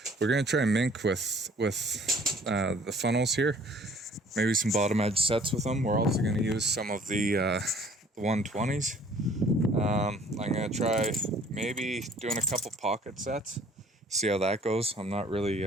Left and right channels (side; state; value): both; normal; correlation 0.55